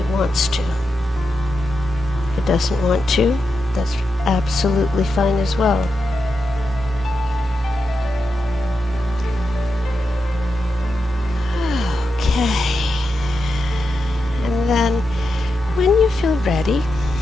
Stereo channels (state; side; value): normal; both; correlation 0.87